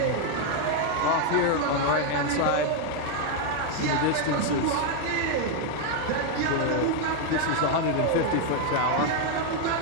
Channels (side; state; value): both; different; correlation 0.01